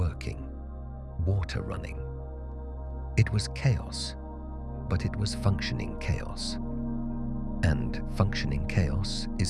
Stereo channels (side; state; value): both; identical; correlation 1.00